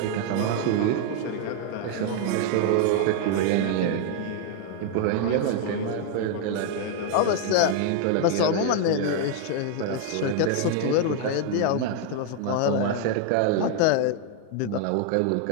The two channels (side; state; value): both; different; correlation 0.00